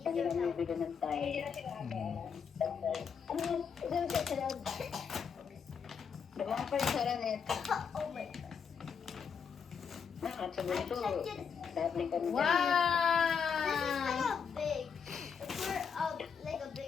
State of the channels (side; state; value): right; quieter; 6.6 dB